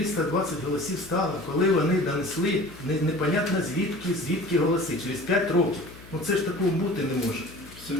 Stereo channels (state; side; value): noise; left; hum, 19 dB below the sound